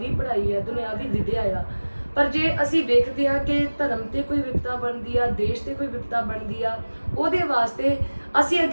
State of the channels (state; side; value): inverted; both; correlation -1.00